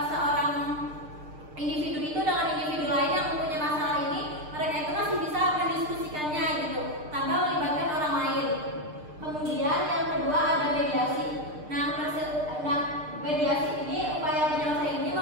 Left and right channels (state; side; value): late; left; 6.6 ms